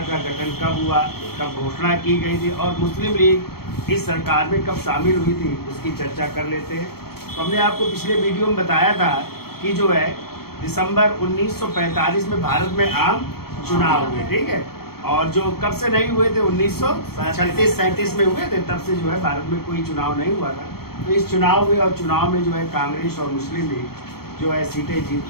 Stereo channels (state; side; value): late; right; 0.95 ms